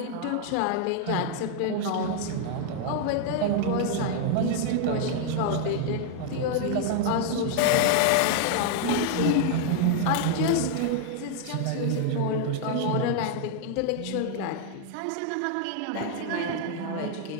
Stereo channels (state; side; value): different; both; correlation 0.00